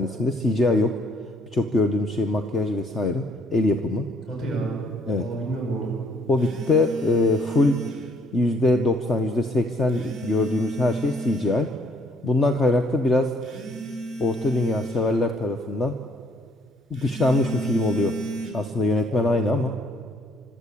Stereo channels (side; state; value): both; normal; correlation 0.65